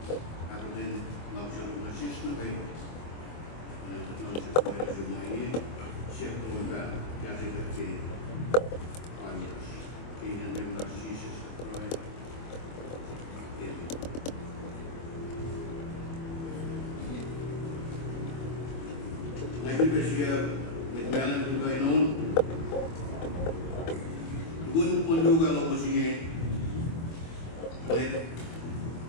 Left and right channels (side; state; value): right; late; 24 ms